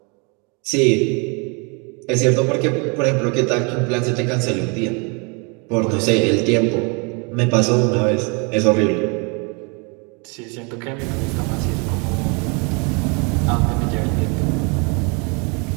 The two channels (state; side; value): quieter; left; 32.9 dB